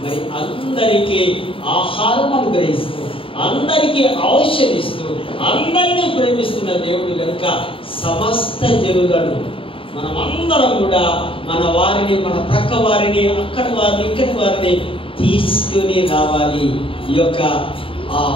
మరి అందరికీ ఆహారం అనుగ్రహిస్తూ, అందరికీ ఔషధిస్తూ, అందరినీ ప్రేమిస్తున్న దేవుడు కనుక సమస్త జనులను మనమందరం కూడా మన వారిని, మన ప్రక్క వారిని, అక్కడి వారిని, ఇక్కడి వారిని తీసుకుని రావాలి. ఈ యొక్క ఆ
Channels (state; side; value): late; right; 0.26 ms